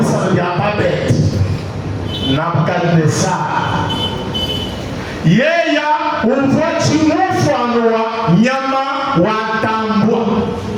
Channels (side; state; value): both; identical; correlation 1.00